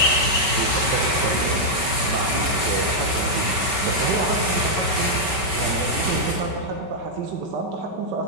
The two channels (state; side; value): late; left; 5.3 ms